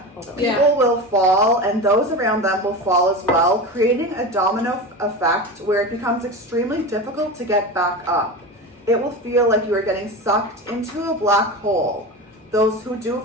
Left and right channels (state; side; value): normal; both; correlation 0.26